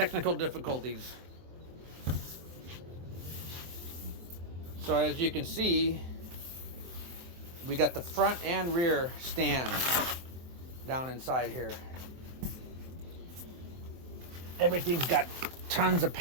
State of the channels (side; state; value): left; late; 23 ms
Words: difficulties. So as you can see, we got the front and rear stand down inside here. Everything's got tons of